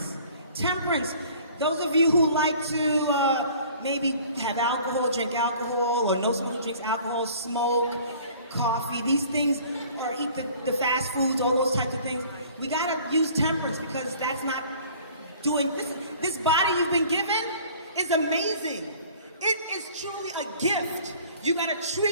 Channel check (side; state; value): both; inverted; correlation -0.50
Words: Temperance. Those of you who like to maybe have alcohol, drink alcohol, or know someone who drinks alcohol, smoke, coffee, these things, or eat the fast foods, all those types of things, we gotta use temperance because that's not doing, this body you've been given is amazing. It is truly a gift. You gotta